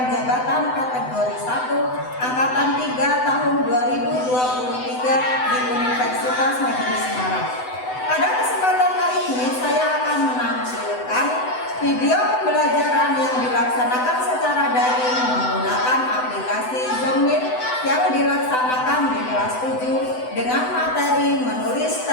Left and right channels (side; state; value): right; late; 7.9 ms